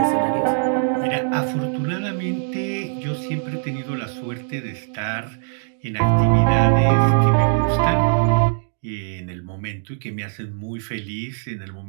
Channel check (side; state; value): left; silent; digital silence